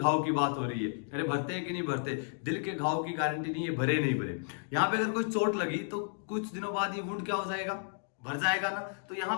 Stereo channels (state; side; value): silent; right; digital silence